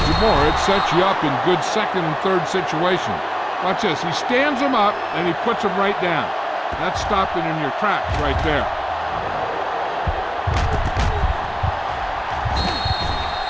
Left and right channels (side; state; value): both; identical; correlation 1.00